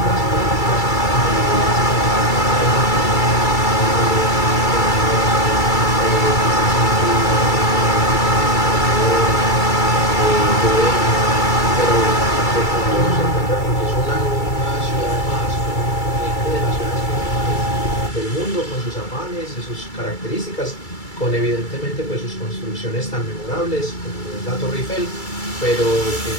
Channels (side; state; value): right; late; 2.3 ms